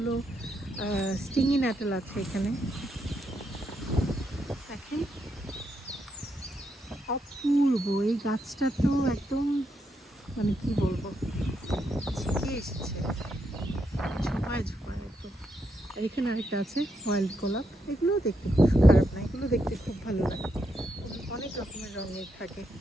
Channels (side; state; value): both; normal; correlation 0.80